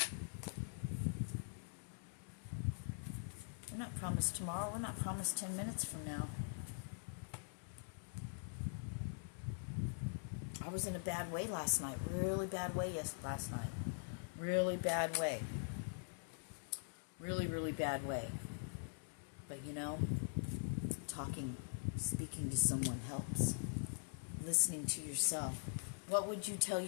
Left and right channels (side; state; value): right; silent; digital silence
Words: We're not promised tomorrow. We're not promised 10 minutes from now. I was in a bad way last night. Really bad way last night. Really bad way. Really, really bad way. But you know, speaking to someone helps. Listening to yourself. What would you tell